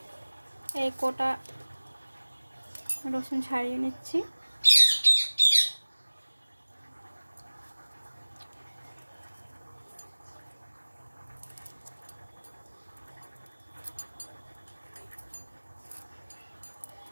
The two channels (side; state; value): both; inverted; correlation -1.00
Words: এই কোটা রসুন ছাড়িয়ে নিচ্ছি।